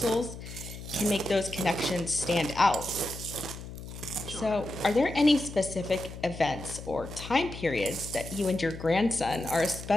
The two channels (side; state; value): left; noise; hum, 11 dB below the sound